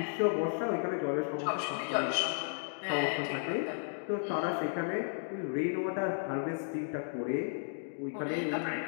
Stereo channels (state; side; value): silent; right; digital silence